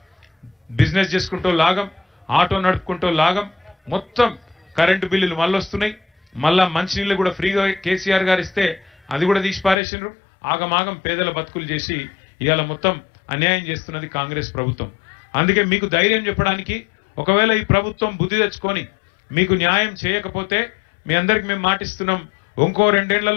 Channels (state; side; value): drops out; right; at 9.8 s